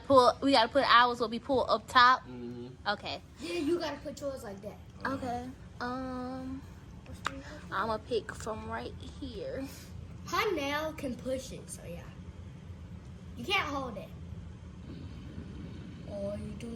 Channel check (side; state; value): both; identical; correlation 1.00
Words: put ours will be pulled up top. Okay. Yeah, you gotta put yours like that. Okay. I'm gonna pick from right here. Her nail can push it, so yeah. You can't hold it. Oh, you